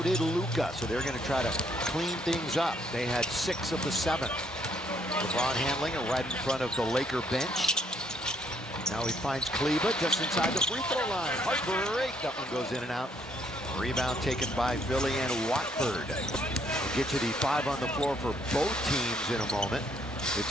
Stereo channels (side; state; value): both; normal; correlation 0.69